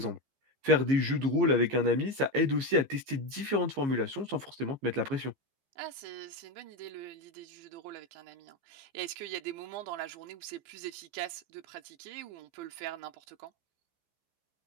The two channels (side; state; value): left; late; 15 ms